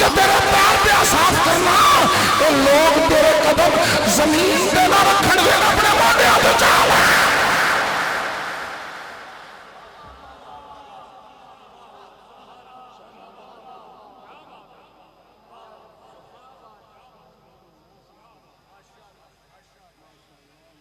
तेरे पैर पे साफ करना, ये लोग तेरे कदम जमीन पे ना रखन देना, अपने मोटे हाथ चाल है।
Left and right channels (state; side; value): identical; both; correlation 1.00